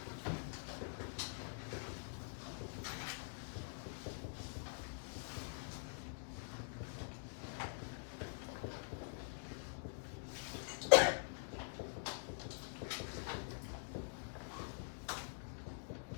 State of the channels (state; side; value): silent; right; digital silence